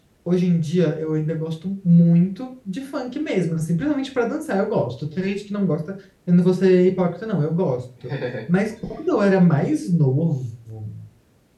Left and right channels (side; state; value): both; identical; correlation 1.00